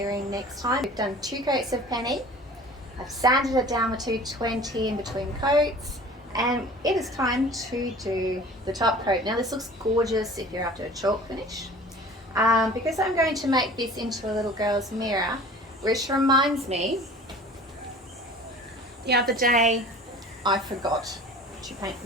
next time. We've done 2 coats of penny. I've sanded it down with 220 in between coats. And it is time to do the top coat. Now this looks gorgeous if you're after a chalk finish. Because I'm going to make this into a little girl's mirror, which reminds me, the other day I forgot to paint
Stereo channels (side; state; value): both; normal; correlation 0.44